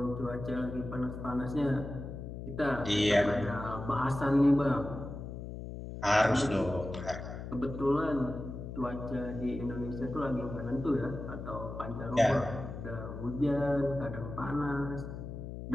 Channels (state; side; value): noise; left; hum, 8 dB below the sound